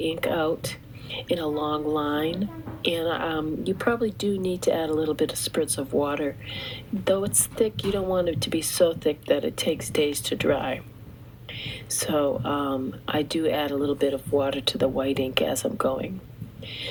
out in a long line, and you probably do need to add a little bit of spritz of water. Though it's thick, you don't want it to be so thick that it takes days to dry. So I do add a little bit of water to the white ink as I'm going.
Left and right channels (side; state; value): both; identical; correlation 1.00